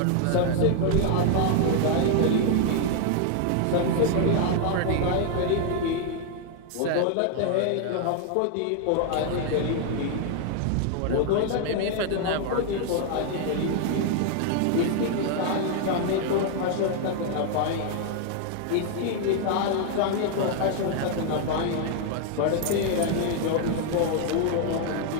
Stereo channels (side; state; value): both; different; correlation 0.00